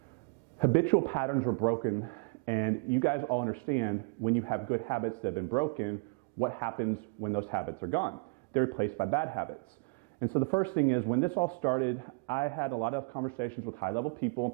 habitual patterns were broken, and you guys all understand when you have good habits that have been broken, what happens when those habits are gone. They're replaced by bad habits. And so the first thing is, when this all started, I had a lot of conversations with high-level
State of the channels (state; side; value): quieter; left; 33.8 dB